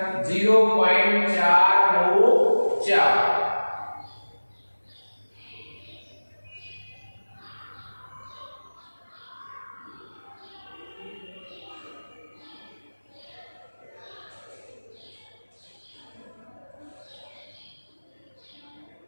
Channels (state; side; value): inverted; both; correlation -1.00